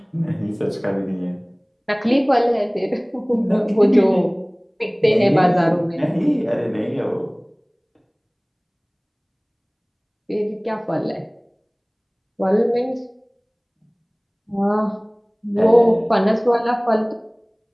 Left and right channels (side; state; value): both; identical; correlation 1.00